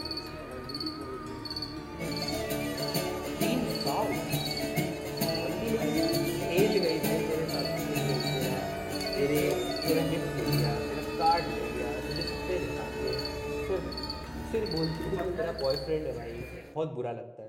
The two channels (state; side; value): identical; both; correlation 1.00